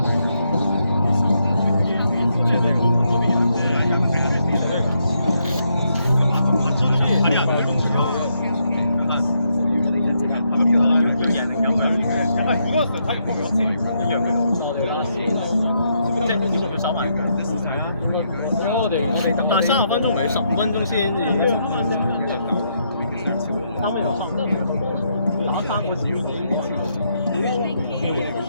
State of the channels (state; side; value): inverted; both; correlation -0.77